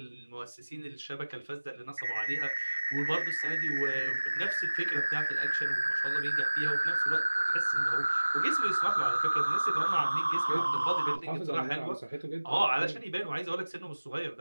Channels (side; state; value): both; inverted; correlation -1.00